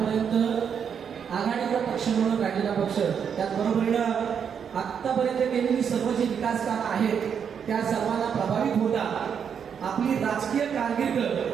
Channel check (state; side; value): quieter; left; 7.4 dB